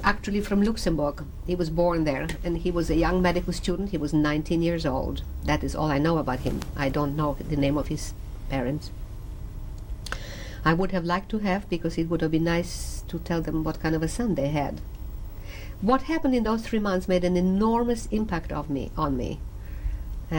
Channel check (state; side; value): identical; both; correlation 1.00